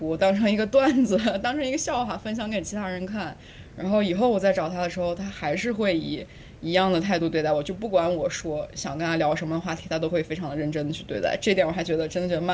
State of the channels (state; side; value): identical; both; correlation 1.00